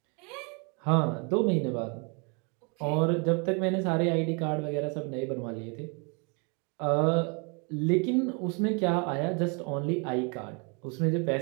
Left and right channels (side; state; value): left; quieter; 34.3 dB